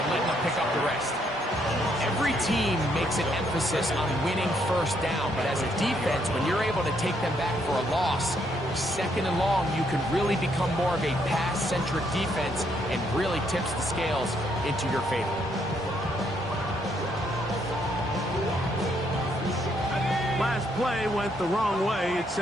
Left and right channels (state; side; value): normal; both; correlation 0.73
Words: and letting them pick up the rest. Every team makes an emphasis on winning first down, but as a defense, when you're able to take them back for a loss, second and long, you can really become more of a pass-centric defense and really tips the scales into your favor. Last play went the wrong way. It